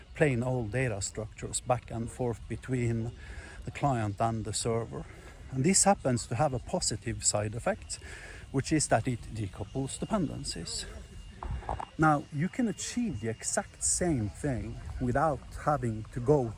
plain old data structures back and forth between the client and the server. And this happens to have a positive side effect, which is that it decouples dependencies. Now, you can achieve the exact same thing without having to go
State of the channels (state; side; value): identical; both; correlation 1.00